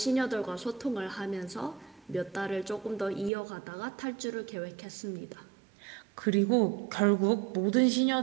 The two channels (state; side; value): drops out; left; at 3.3 s